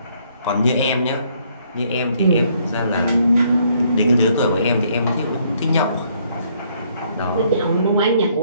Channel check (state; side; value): inverted; both; correlation -0.67